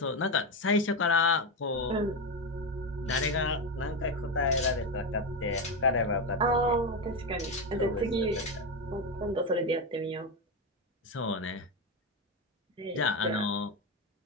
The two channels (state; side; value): normal; both; correlation 0.13